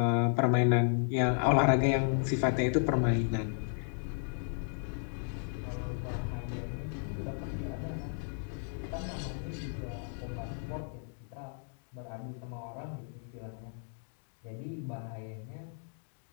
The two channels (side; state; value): right; silent; 55 dB below the other